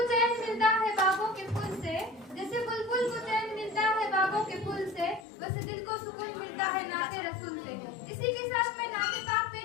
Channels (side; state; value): right; drops out; at 5.2 s